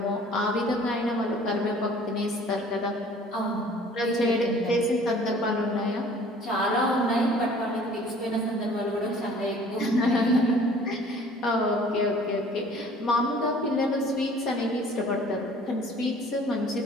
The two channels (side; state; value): both; normal; correlation 0.51